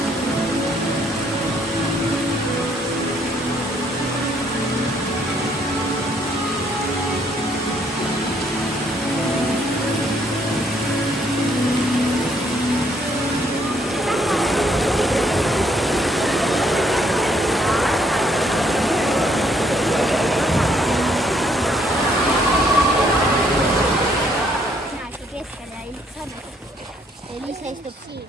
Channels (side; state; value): both; normal; correlation 0.68